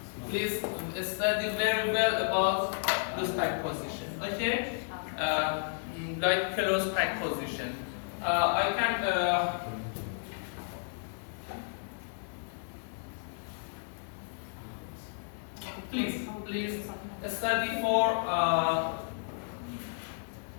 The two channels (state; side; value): silent; right; digital silence